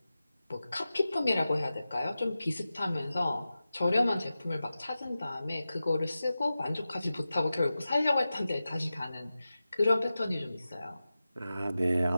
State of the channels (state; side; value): inverted; both; correlation -0.94